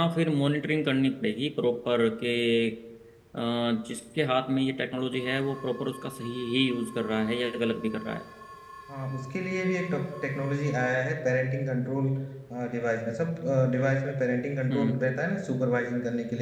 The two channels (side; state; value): both; identical; correlation 1.00